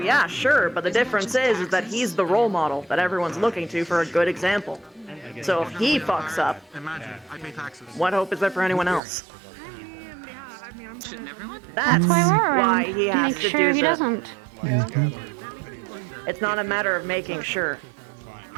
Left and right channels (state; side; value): drops out; left; at 9.0 s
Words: sure, but the difference is that he's the role model that everyone's looking to for a good example. So if he fucks up, what hope is there for anyone else? That's why we're why around. he has Make to sure do he the... doesn't. It's not a matter of making sure.